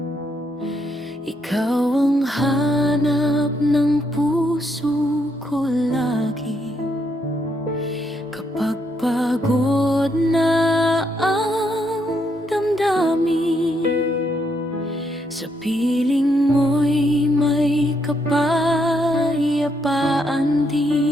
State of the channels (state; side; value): normal; both; correlation 0.76